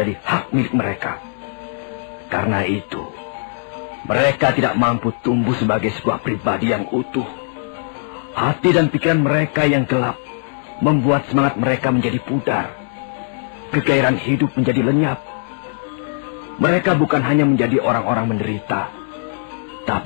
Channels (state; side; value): silent; right; digital silence